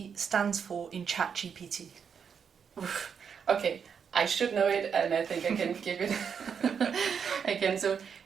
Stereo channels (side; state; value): left; quieter; 6.9 dB